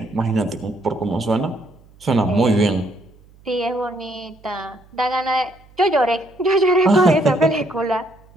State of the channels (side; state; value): right; noise; hum, 27 dB below the sound